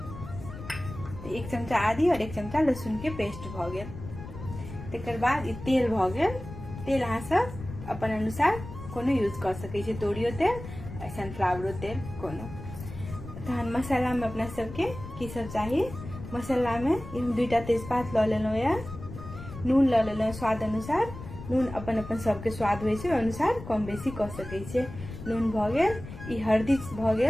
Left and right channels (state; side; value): noise; left; rumble, 12 dB below the sound